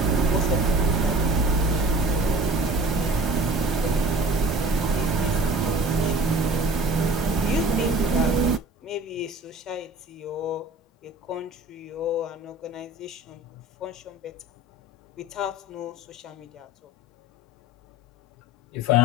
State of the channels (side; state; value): both; normal; correlation 0.43